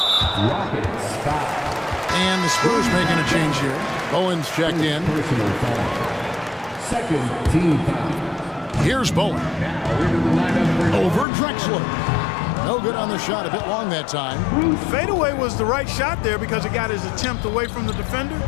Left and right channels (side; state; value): right; drops out; at 11.2 s